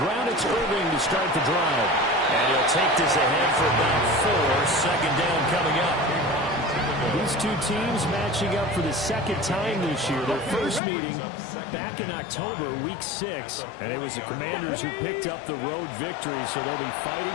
it's Irving to start the drive. And he'll take this ahead for about 4. Second down coming up. These two teams matching up for the second time this year. Their first meeting back in October, week 6. And it was the Commanders who picked up the road victory, so they'll be fighting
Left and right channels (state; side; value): drops out; right; at 10.8 s